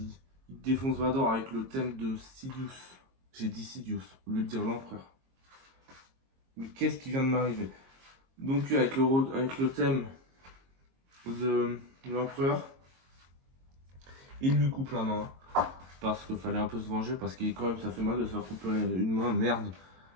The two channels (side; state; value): left; late; 22 ms